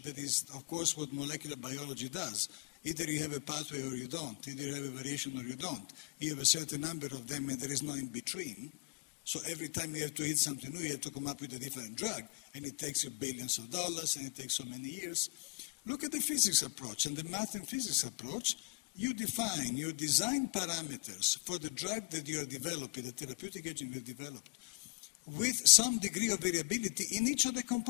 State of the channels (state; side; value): quieter; right; 34.6 dB